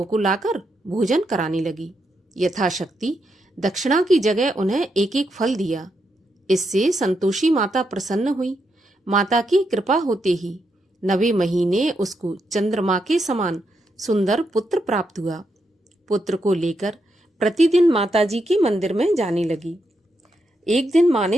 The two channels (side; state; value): both; normal; correlation 0.82